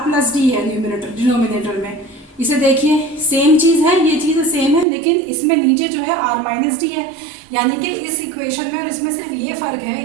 प्लस D है डिनोमिनेटर में, इसे देखिए सेम चीज़ है, ये चीज़ सेम है, लेकिन इसमें नीचे जो है R माइनस डी है, यानी कि इस इक्वेशन में और इसमें सिर्फ ये फ़र्क है,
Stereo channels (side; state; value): left; drops out; at 4.9 s